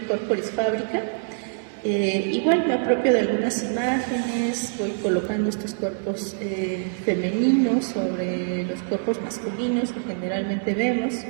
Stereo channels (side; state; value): left; silent; digital silence